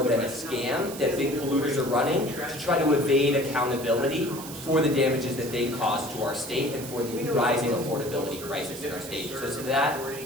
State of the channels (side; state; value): right; noise; hiss, 12 dB below the sound